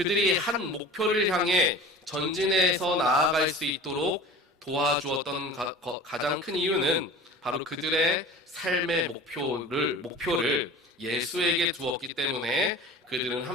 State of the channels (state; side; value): normal; both; correlation 0.39